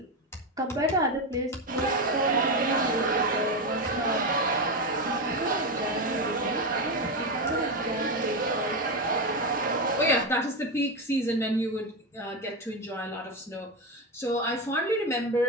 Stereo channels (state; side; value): normal; both; correlation 0.13